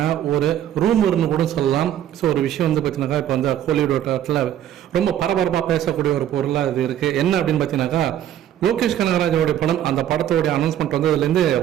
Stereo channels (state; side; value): quieter; left; 11.1 dB